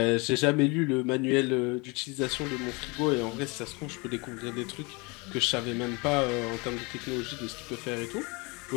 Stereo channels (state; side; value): quieter; right; 28.0 dB